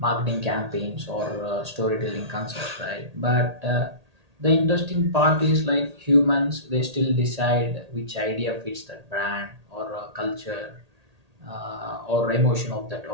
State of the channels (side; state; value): left; late; 1.8 ms